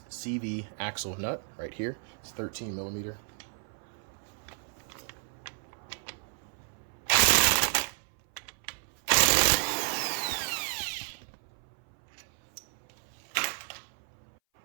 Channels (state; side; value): silent; left; 57 dB below the other